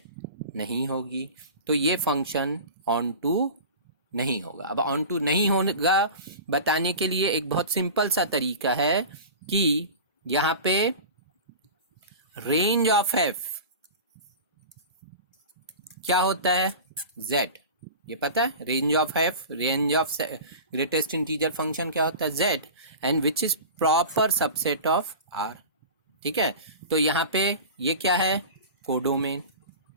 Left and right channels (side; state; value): both; inverted; correlation -0.34